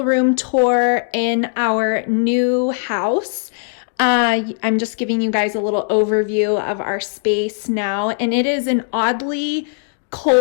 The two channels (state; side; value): silent; right; digital silence